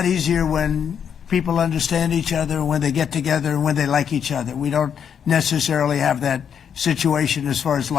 easier when people understand each other, when they get together, and when they like each other. We don't necessarily have that situation as far as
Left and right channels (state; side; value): quieter; right; 7.9 dB